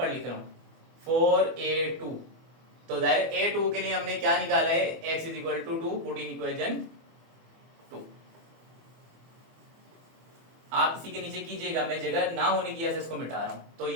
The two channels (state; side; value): late; left; 24 ms